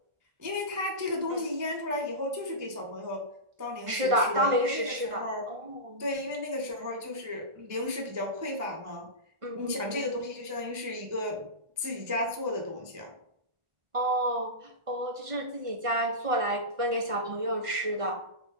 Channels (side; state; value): left; late; 1.5 ms